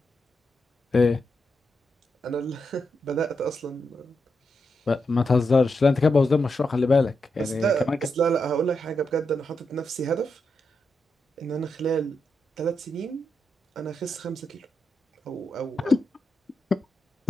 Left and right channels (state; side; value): normal; both; correlation 0.84